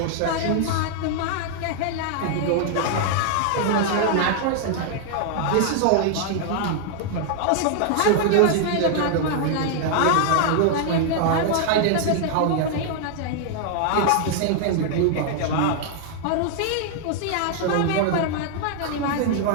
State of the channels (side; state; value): both; different; correlation 0.00